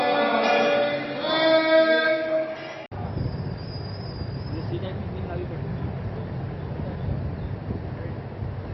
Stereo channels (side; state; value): both; identical; correlation 1.00